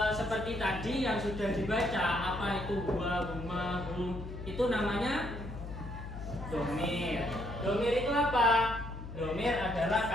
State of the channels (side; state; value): left; noise; hum, 9 dB below the sound